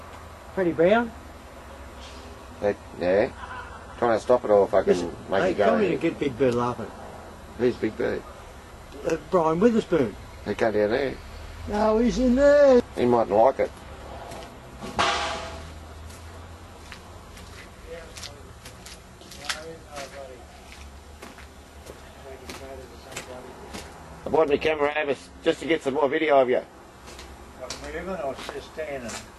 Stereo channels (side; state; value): both; identical; correlation 1.00